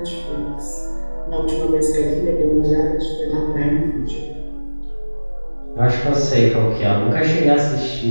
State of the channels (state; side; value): inverted; both; correlation -1.00